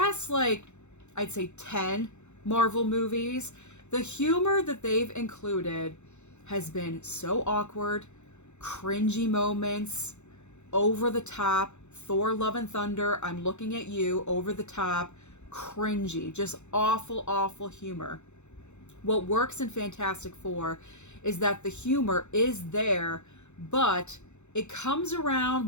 I'd say 10 Marvel movies, the humor that they've included has been so awkward, cringy moments, over the top. Thor Love and Thunder, I'm looking at you, over the top, cringy, just awful, awful humor. What works in Fantastic Four is that the humor is there, but it comes around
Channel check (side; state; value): right; late; 0.83 ms